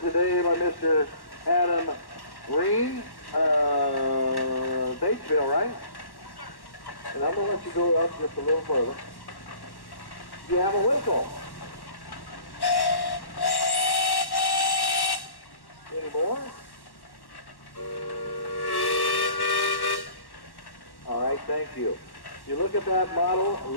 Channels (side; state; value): right; late; 1.1 ms